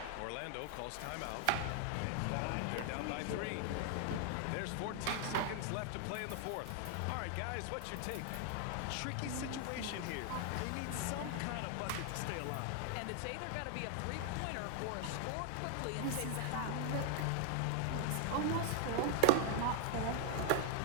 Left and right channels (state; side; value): different; both; correlation 0.00